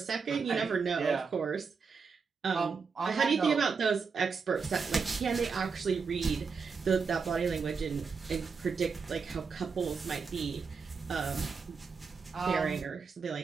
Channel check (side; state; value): left; quieter; 5.3 dB